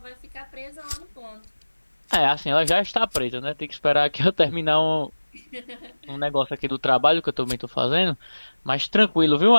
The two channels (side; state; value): both; inverted; correlation -1.00